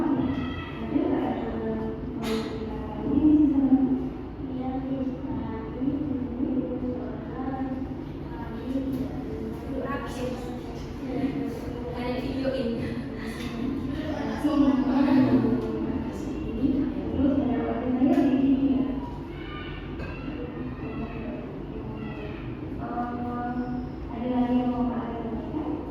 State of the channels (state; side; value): identical; both; correlation 1.00